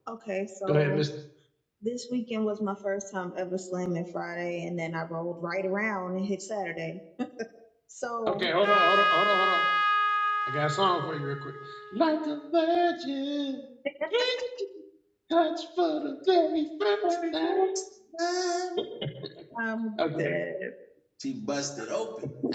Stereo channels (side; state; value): both; identical; correlation 1.00